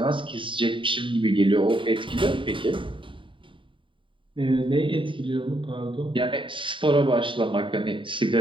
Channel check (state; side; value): late; left; 0.24 ms